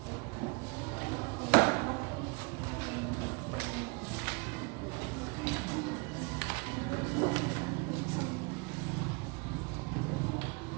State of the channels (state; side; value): quieter; left; 29.7 dB